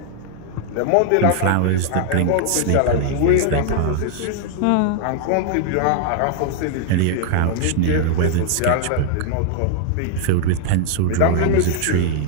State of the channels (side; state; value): both; different; correlation 0.00